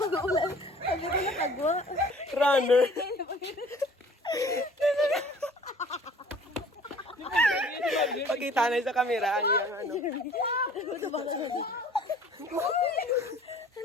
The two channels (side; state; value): both; normal; correlation 0.50